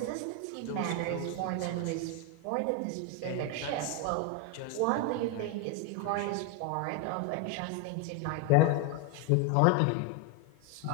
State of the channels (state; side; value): different; both; correlation 0.01